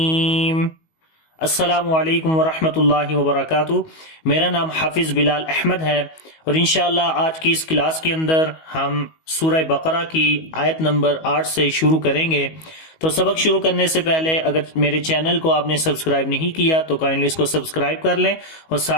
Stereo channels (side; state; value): right; late; 19 ms